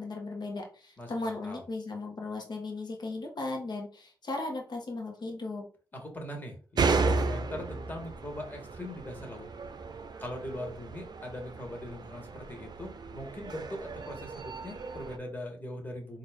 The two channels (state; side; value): normal; both; correlation 0.70